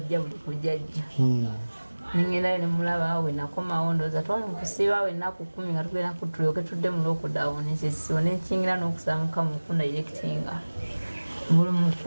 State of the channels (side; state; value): both; inverted; correlation -1.00